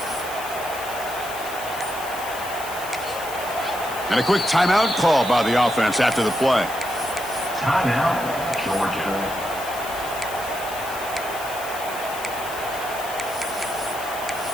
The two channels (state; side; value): noise; left; hiss, 12 dB below the sound